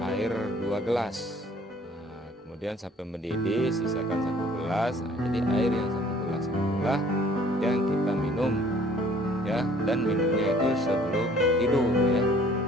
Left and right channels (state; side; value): normal; both; correlation 0.55